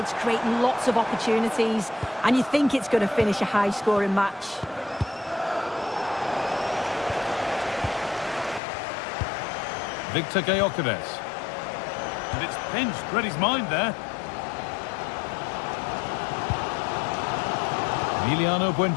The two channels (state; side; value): drops out; right; at 8.6 s